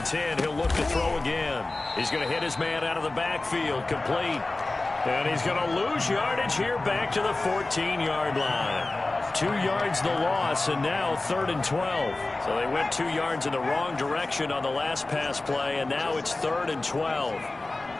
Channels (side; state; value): right; quieter; 3.1 dB